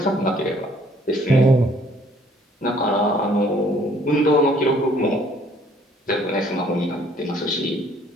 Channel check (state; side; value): normal; both; correlation 0.60